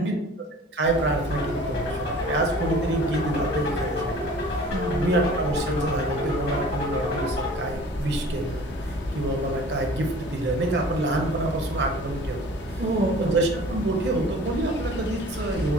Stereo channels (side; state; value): both; normal; correlation 0.46